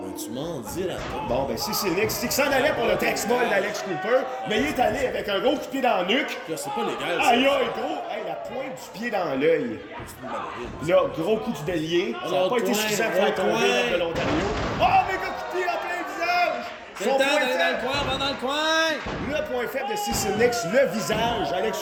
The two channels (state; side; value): identical; both; correlation 1.00